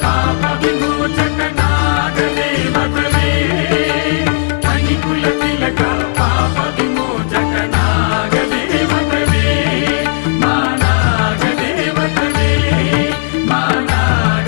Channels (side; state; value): right; silent; digital silence